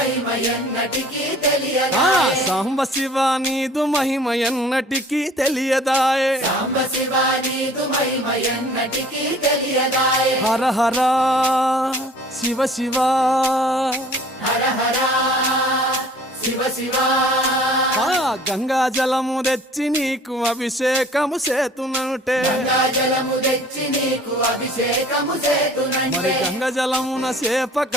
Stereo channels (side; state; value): both; normal; correlation 0.50